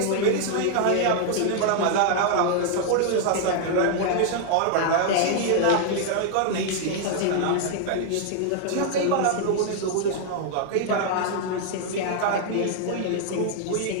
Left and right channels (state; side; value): different; both; correlation 0.00